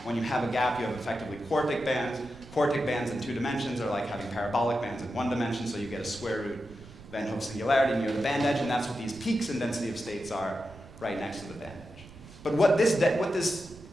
When you have a gap, you have effectively quartic bands. Quartic bands in 2 dimensions are like having parabolic bands in 1 dimension, so you get a square root Van Hoff singularity near the band edge, and that's what these peaks in density of states are right next to the band edge. But what this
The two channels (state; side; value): noise; right; rumble, 19 dB below the sound